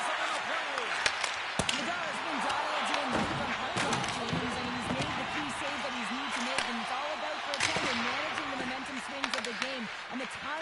on the play. Nadal's been dialed in from puck-off, James. I mean, he's made the key save that he's needed to make, and it's all about, for a tender, managing the momentum swings of the game, and the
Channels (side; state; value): both; identical; correlation 1.00